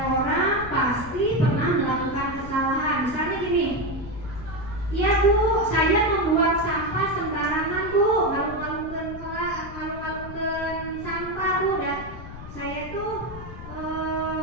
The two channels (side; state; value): left; noise; rumble, 12 dB below the sound